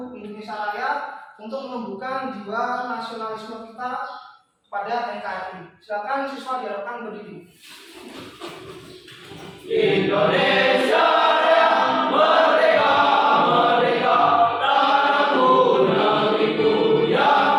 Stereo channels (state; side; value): identical; both; correlation 1.00